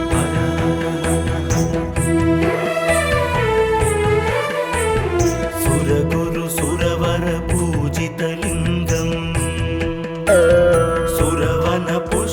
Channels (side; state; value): both; identical; correlation 1.00